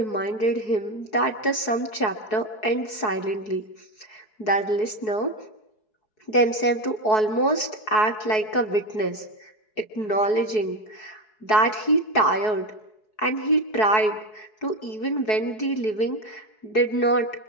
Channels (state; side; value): late; right; 4.7 ms